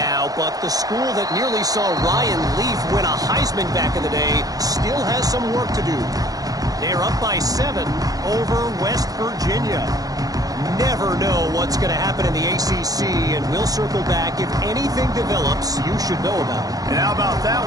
but the school that nearly saw Ryan Leaf win a Heisman back in the day still has some work to do. They're up by 7 over West Virginia. Never know what's going to happen in the ACC, and we'll circle back if anything develops you should know about. And how about that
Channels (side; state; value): left; late; 0.18 ms